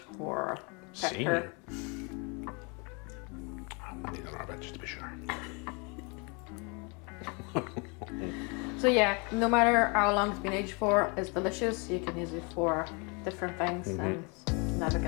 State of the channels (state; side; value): quieter; right; 31.8 dB